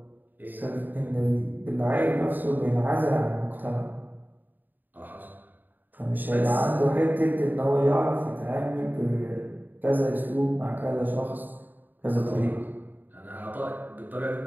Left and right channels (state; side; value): late; left; 0.088 ms